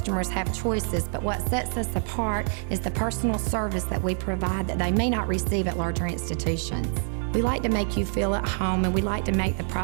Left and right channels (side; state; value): left; silent; 61 dB below the other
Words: have choices, but what sets us apart is the personal service that we provide that they may not receive at larger institutions. We like to make you feel at home, and we like to make the